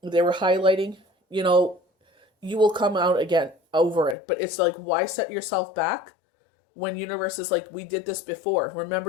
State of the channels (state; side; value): drops out; right; at 4.2 s